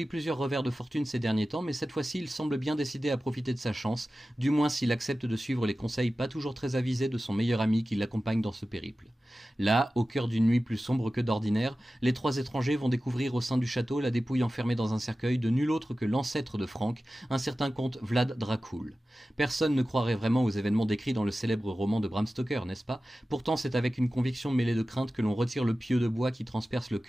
plusieurs revers de fortune ces derniers temps, mais cette fois-ci il semble bien décidé à profiter de sa chance, du moins s'il accepte de suivre les conseils pas toujours très avisés de son meilleur ami qui l'accompagne dans ce périple. Là, au cœur d'une nuit plus sombre que d'ordinaire, les trois étrangers vont découvrir au sein du château la dépouille enfermée dans un cercueil de nul autre que l'ancêtre de Frank, un certain comte Vlad Dracul. Personne ne croirait vraiment aux événements décrits dans le célèbre roman de Bram Stoker, n'est-ce pas? Pourtant, c'est avec une conviction mêlée de crainte que l'on retire le pieu de bois qui transperce le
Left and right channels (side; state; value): both; normal; correlation 0.95